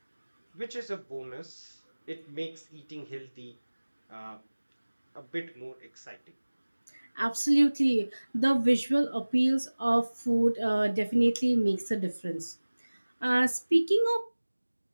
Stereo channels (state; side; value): inverted; both; correlation -1.00